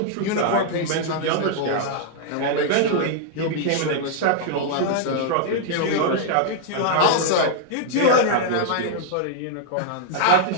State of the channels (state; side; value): different; both; correlation -0.01